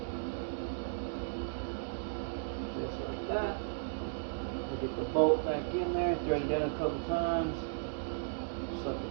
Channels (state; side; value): silent; left; digital silence